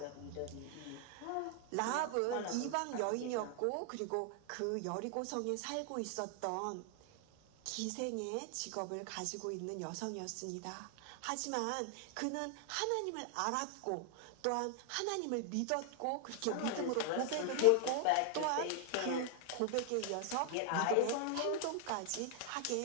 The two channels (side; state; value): both; different; correlation 0.00